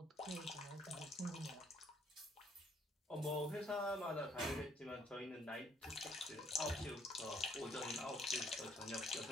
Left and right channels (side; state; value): both; normal; correlation 0.65